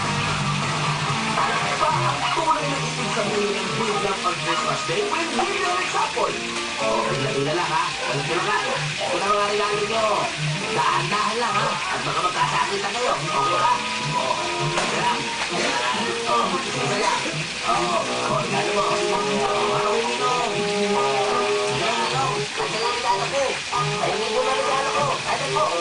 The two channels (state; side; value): identical; both; correlation 1.00